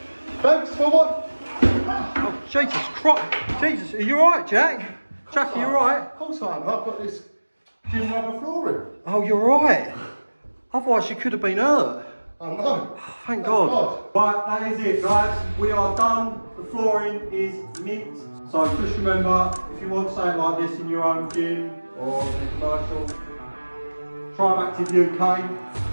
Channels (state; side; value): inverted; both; correlation -1.00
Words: Thanks for what? Oh, Jesus Christ. Jesus, are you alright, Jack? Jack, are you alright? Of course I am. I've got this gym rubber flooring. Oh, you're right. Otherwise you could have been hurt. I know. Thank God. Right, that is it, guys. We are done. The flooring is mint. So just remember, if you want something like this in your own gym or in a commercial, Scribe Active